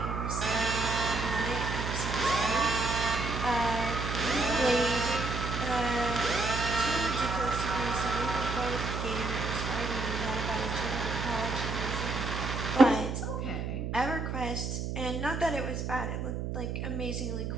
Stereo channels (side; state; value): right; noise; hum, 3 dB below the sound